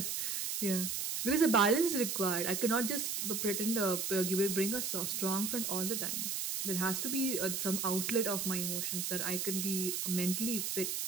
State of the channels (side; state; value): right; noise; hiss, 1 dB below the sound